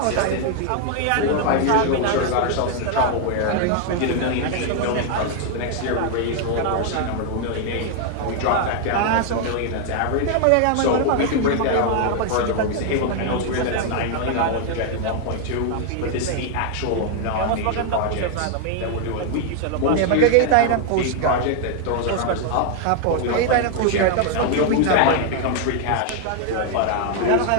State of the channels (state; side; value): different; both; correlation 0.00